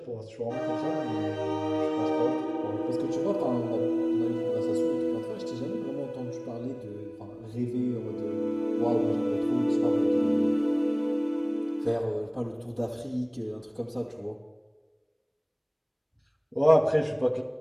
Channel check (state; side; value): identical; both; correlation 1.00